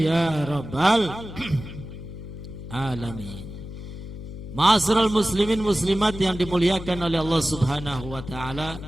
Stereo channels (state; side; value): noise; left; hum, 11 dB below the sound